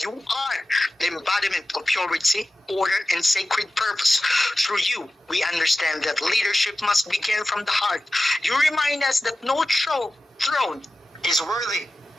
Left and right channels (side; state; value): both; normal; correlation 0.94